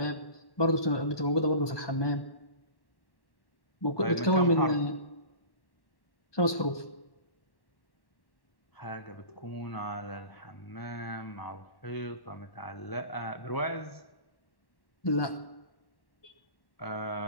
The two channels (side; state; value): right; late; 1.1 ms